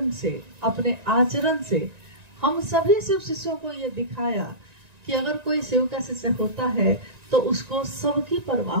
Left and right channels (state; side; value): late; left; 1.9 ms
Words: से, अपने आचरण से हम सभी शिव शिष्यों को ये दिखाया कि अगर कोई शिव का शिष्य होता है तो उसको सबकी